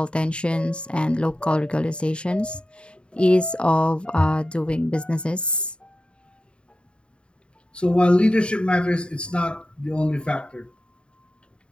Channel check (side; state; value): right; late; 0.054 ms